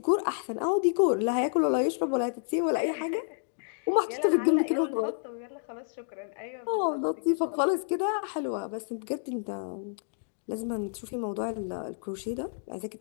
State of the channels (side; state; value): right; silent; digital silence